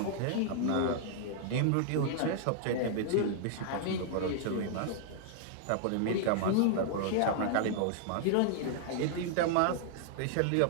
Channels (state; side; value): different; both; correlation -0.01